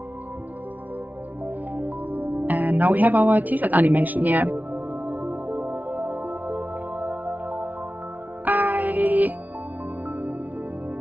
And now we have our t-shirt animation here.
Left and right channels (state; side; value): late; left; 0.076 ms